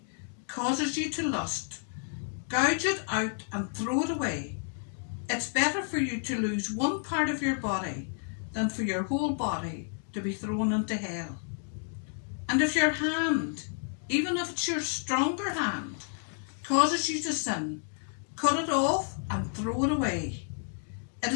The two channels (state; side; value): silent; right; 57 dB below the other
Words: causes you to lust, gouge it out and throw it away. It's better for you to lose one part of your body than for your whole body to be thrown into hell. And if your hand, even if it's your stronger hand, causes you to sin, cut it off and throw it away. It